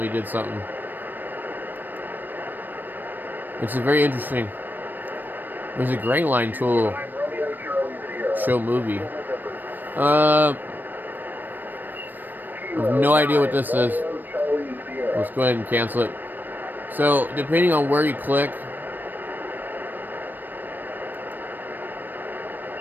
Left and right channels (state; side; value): late; left; 0.091 ms